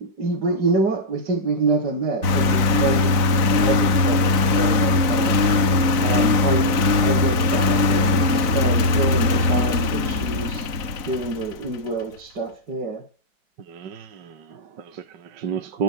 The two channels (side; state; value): left; late; 4.0 ms